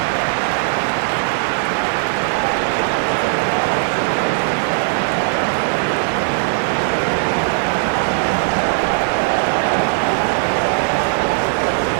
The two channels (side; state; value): left; silent; digital silence